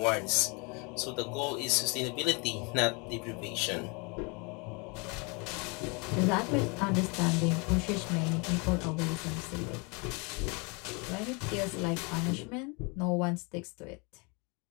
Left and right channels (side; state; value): right; quieter; 31.1 dB